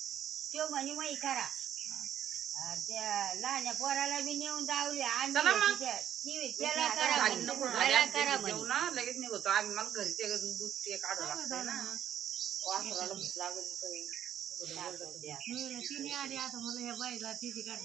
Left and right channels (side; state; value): left; quieter; 10.3 dB